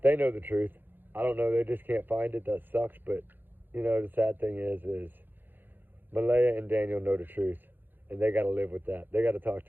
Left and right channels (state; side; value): late; left; 0.092 ms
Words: know the truth. I don't know. They just can't find it. That sucks. But, you know, the sad thing is Malaya and Daniel know the truth. And they got to live with that. They got to talk